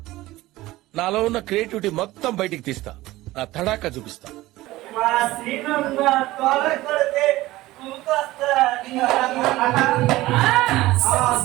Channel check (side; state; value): left; quieter; 17.8 dB